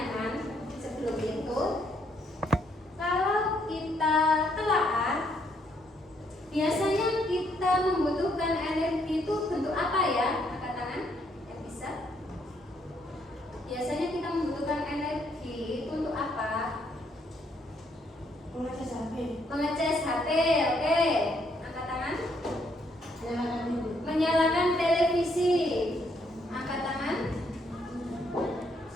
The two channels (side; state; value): both; normal; correlation 0.72